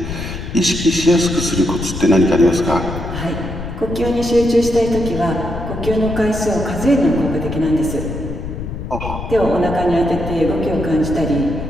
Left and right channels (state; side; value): noise; left; rumble, 8 dB below the sound